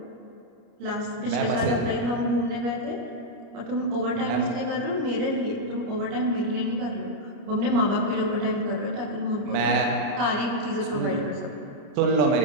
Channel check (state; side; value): late; left; 29 ms